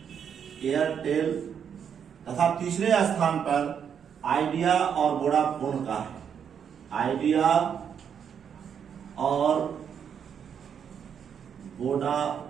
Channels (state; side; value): quieter; left; 7.8 dB